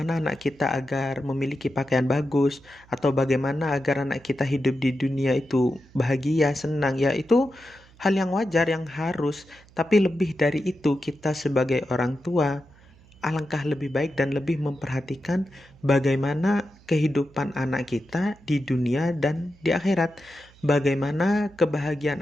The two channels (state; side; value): noise; right; hum, 26 dB below the sound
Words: anak kita agar memiliki pakaian bagus, atau bagaimana agar anak kita hidup di dunia itu bahagia, senang. Ya, itu hal yang wajar, yang harus. Tapi lebih dari itu, kita sebagai orang tua alangkah lebih baik dan lebih memperhatikan bagaimana kehidupan anak kita di dunia dan di akhirat. Bagaimana kebahagiaan